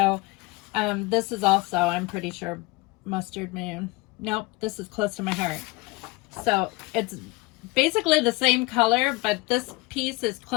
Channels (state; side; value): quieter; right; 23.4 dB